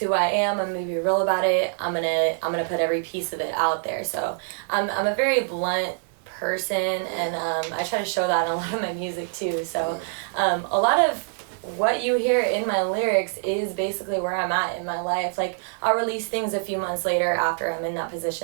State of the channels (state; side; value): silent; left; digital silence